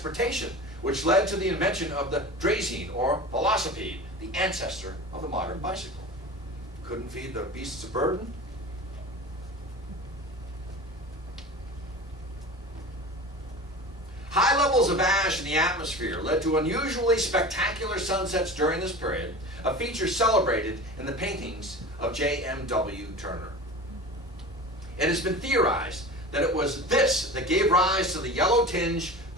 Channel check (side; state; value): both; normal; correlation 0.34